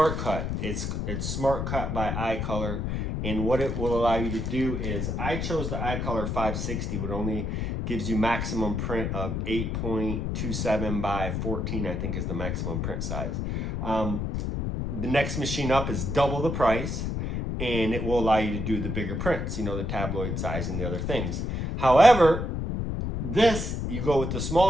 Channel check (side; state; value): left; noise; rumble, 2 dB below the sound